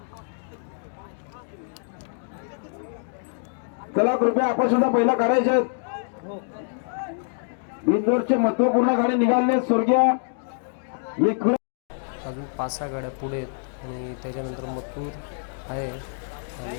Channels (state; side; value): silent; right; digital silence